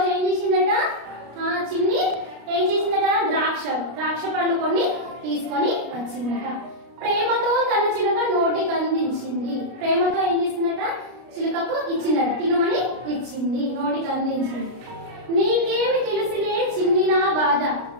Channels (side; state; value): left; late; 33 ms